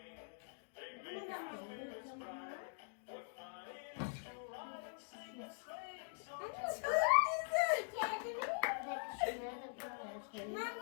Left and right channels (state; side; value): silent; right; digital silence